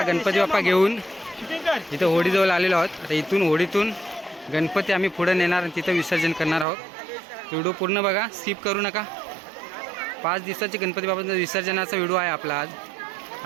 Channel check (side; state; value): left; drops out; at 6.7 s